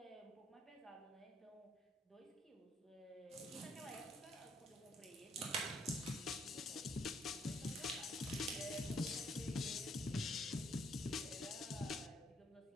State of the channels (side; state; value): both; normal; correlation 0.68